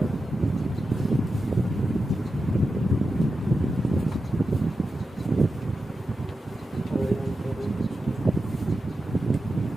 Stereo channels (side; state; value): both; normal; correlation 0.90